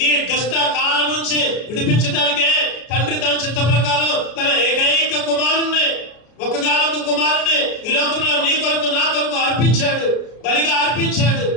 ఈ దుష్ట కాలం నుంచి విడిపించడానికే తండ్రి తన చిత్త ప్రకారం తన ఏకైక కుమారుణ్ణి, ఒక్కగానొక్క కుమారుణ్ణి ఈ లోకంలో నీ కొరకు నా కొరకు అర్పించాడు, బలిగా అర్పించాడు.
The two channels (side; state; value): right; late; 33 ms